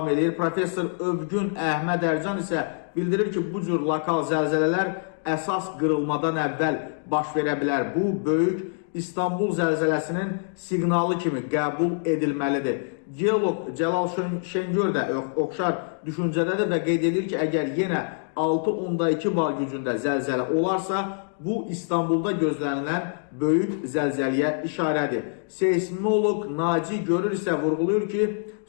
edir. Professor Övgün Əhməd Ərcan isə bildirir ki, bu cür lokal zəlzələlər əsas qırılmadan əvvəl baş verə bilər. Bu, böyük İstanbul zəlzələsinin siqnalı kimi qəbul edilməlidir. Geolog Cəlal Şengör də oxşar düşüncədədir və qeyd edir ki, əgər yenə 6.2 bar gücündə zəlzələ olarsa, bu İstanbulda gözlənilən böyük zəlzələyə işarədir. Seismolog Naci Görür isə vurğulayır ki,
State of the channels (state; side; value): silent; right; digital silence